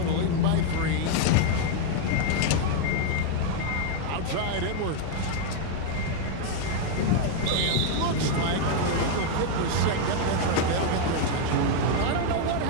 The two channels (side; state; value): both; different; correlation 0.00